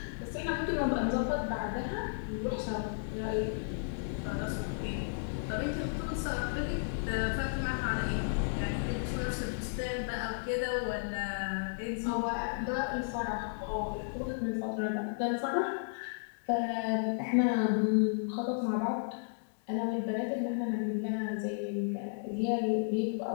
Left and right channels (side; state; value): right; silent; digital silence